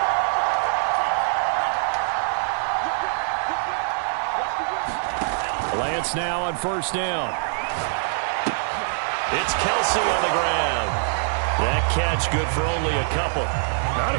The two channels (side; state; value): left; silent; digital silence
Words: Lance now on first down. It's Kelsey on the ground. That catch good for only a couple. Not